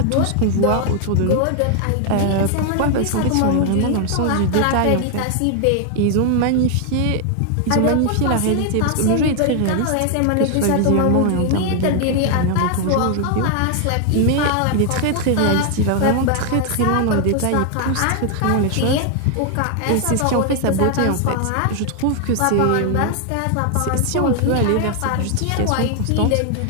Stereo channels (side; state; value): both; different; correlation 0.00